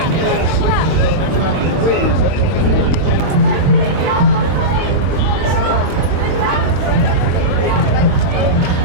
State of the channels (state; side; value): late; left; 22 ms